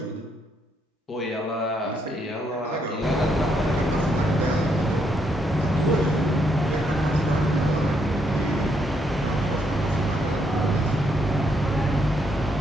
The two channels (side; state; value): both; normal; correlation 0.75